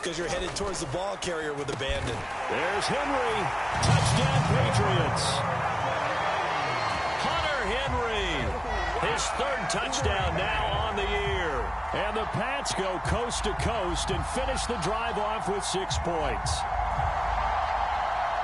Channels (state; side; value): identical; both; correlation 1.00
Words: you're headed towards the ball carrier with abandon. There's Henry. Touchdown, Patriots. Hunter Henry. His third touchdown now on the year. And the Pats go coast to coast and finish the drive off with 6 points.